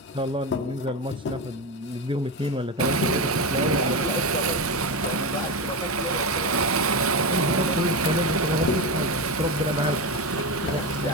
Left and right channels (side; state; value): both; normal; correlation 0.17